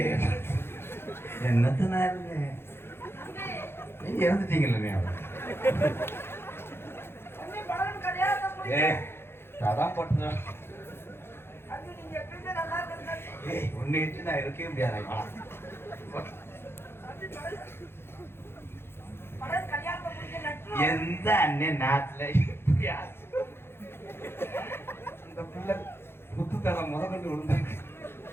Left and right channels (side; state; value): right; late; 0.11 ms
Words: என்னத்தனா நீங்க இறந்துட்டீங்கல்ல. அதான் போட்டு ஒன்னு நான் இருக்கவே முடியாது. எந்த அண்ணன் நாட்டுல இந்த பிள்ளை புத்துத்தலை முதற்கொண்டு விழுந்தாங்க.